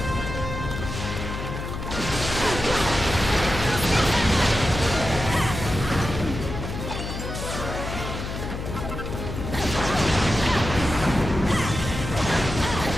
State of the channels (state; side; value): noise; left; hum, 6 dB below the sound